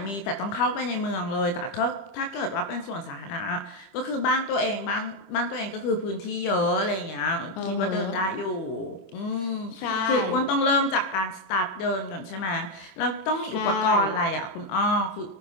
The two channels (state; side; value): late; right; 26 ms